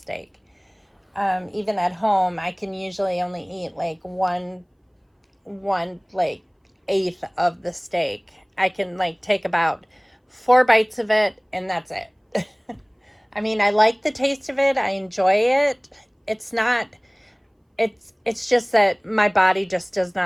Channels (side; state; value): both; identical; correlation 1.00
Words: Even at home, I can usually only eat like one like eighth of the steak. I can like take about 4 bites of it, and that's it. I mean, I like the taste of it. I enjoy it. It's just that my body just does